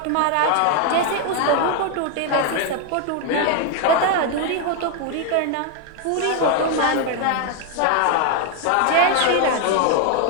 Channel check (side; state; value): both; different; correlation 0.01